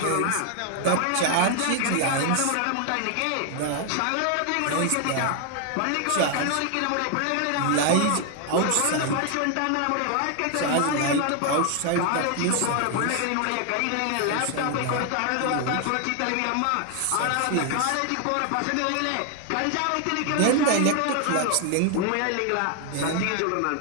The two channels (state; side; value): different; both; correlation 0.00